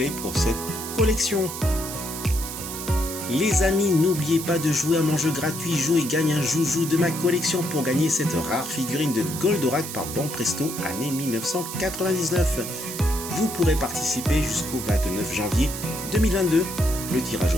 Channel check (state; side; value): noise; right; hiss, 8 dB below the sound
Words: pour cette collection. Les amis, n'oubliez pas de jouer à mon jeu gratuit Joue et gagne un joujou de ma collection pour gagner cette rare figurine de Goldorak par Banpresto année 1999. Vous pourrez participer jusqu'au 29 janvier 2022. Le tirage